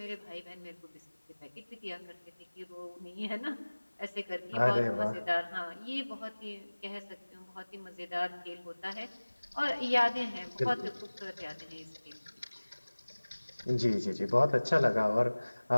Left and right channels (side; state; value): both; inverted; correlation -1.00